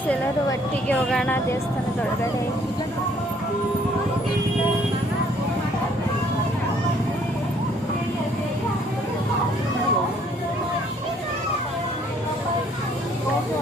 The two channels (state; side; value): normal; both; correlation 0.62